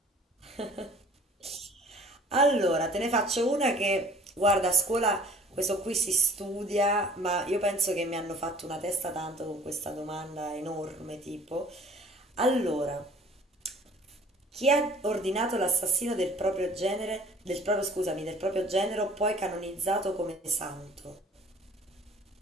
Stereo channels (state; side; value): normal; both; correlation 0.52